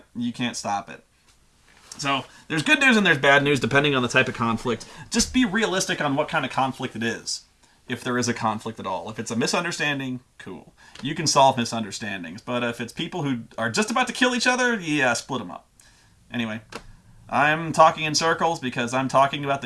stop it. So there's good news and there's bad news depending on the type of conflict. Just be realistic on what kind of conflict it is, if there is a conflict at all. If it's a misunderstanding, cool, you can solve misunderstandings. But if it's people who are just about to kill each other, yeah, split them up. Anyway, I'm talking in circles because I'm talking about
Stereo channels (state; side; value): identical; both; correlation 1.00